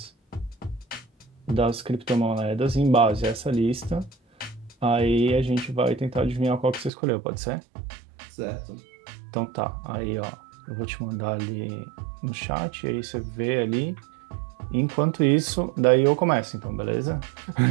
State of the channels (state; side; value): drops out; left; at 6.9 s